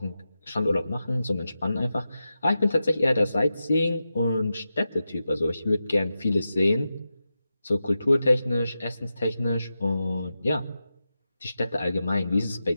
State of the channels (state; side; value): inverted; both; correlation -0.91